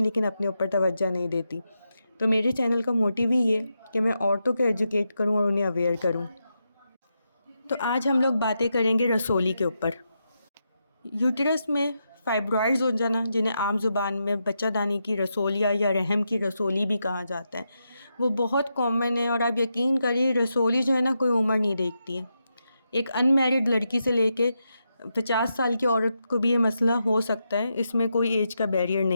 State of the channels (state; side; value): inverted; both; correlation -0.85